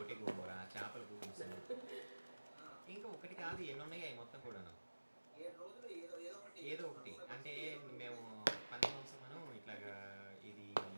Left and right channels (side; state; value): both; inverted; correlation -1.00